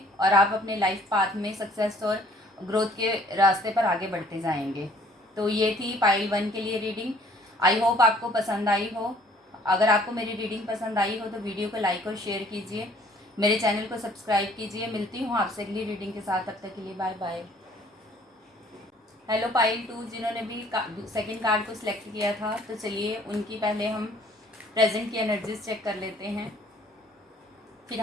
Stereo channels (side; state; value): both; normal; correlation 0.58